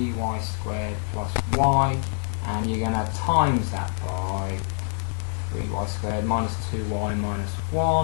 squared plus y, and you're going to times that by 3y squared minus 2y minus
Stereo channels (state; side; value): silent; right; 61 dB below the other